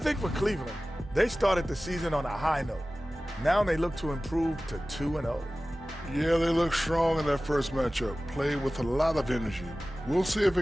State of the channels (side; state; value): both; normal; correlation 0.97